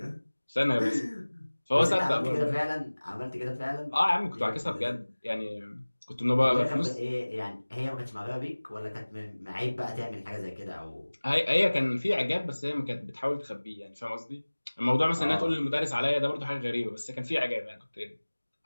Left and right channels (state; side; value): inverted; both; correlation -1.00